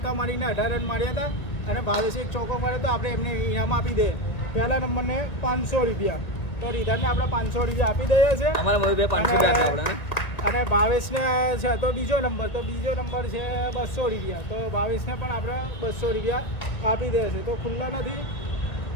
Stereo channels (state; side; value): late; right; 2.0 ms